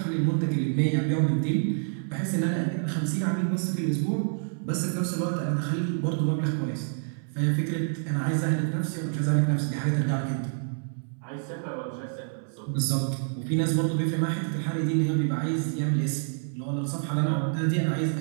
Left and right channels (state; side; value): silent; left; 60 dB below the other